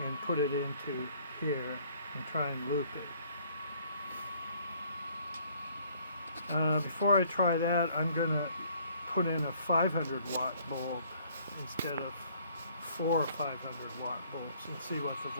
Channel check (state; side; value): inverted; both; correlation -0.60